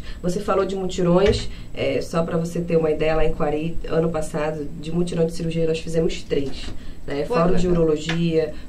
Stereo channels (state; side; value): identical; both; correlation 1.00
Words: Você falou de mutirões, só para você ter uma ideia, lá em Quari, ano passado, de mutirão de cirurgia, nós fizemos 3. Fórum de urologia,